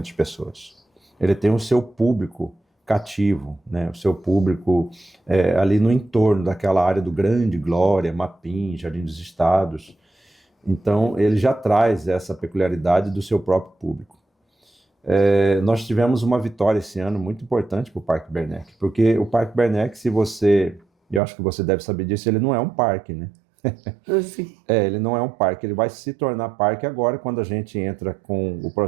pessoas. Ele tem o seu público cativo, né? O seu público ali no entorno daquela área do Grande Glória, Mapim, Jardim dos Estados. Então, ele já traz essa peculiaridade do seu próprio público. Nós tivemos uma vitória esse ano muito importante para o Parque Bernec, porque o Parque Bernec, eu acho que você deve saber disso, ele não é um parque, né? Sim. Ele não é um parque, ele vai se tornar parque agora quando a gente entra com o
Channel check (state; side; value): drops out; left; at 21.2 s